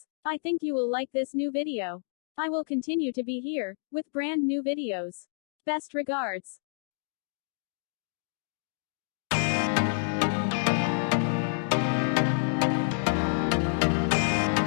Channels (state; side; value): silent; right; digital silence